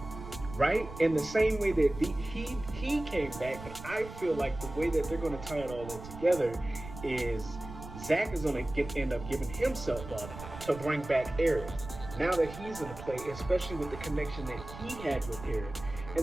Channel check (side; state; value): right; noise; rumble, 13 dB below the sound